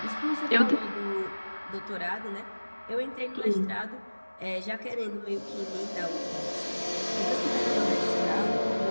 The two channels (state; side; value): inverted; both; correlation -1.00